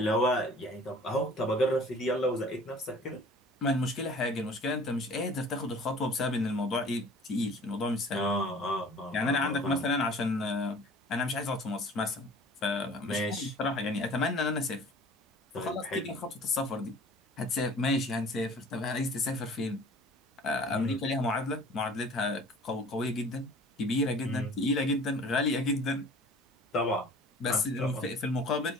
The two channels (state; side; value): normal; both; correlation 0.47